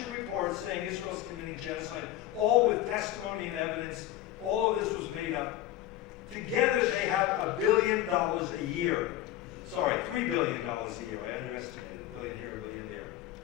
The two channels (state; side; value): quieter; right; 13.4 dB